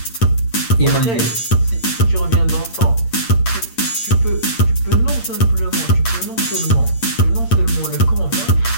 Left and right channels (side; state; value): right; late; 8.7 ms